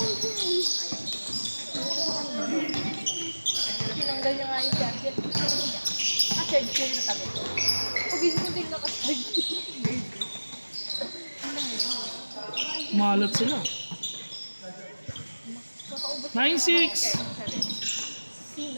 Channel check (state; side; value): inverted; both; correlation -1.00